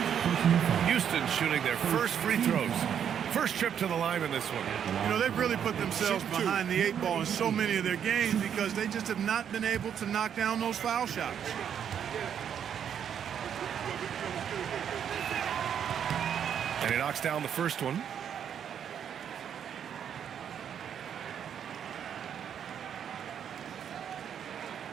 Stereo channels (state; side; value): quieter; left; 8.6 dB